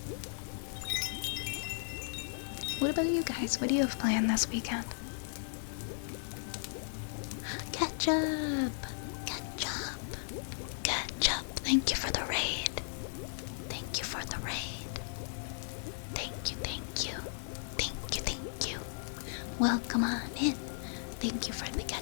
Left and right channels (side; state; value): right; silent; 54 dB below the other